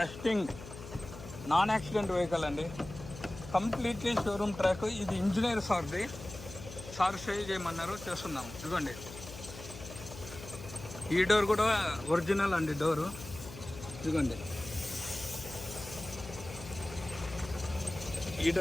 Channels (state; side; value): noise; left; hum, 13 dB below the sound